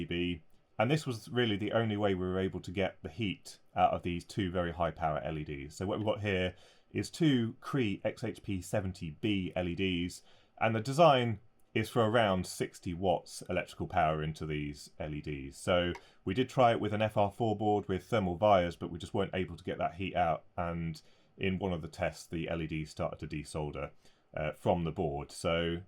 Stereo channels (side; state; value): both; identical; correlation 1.00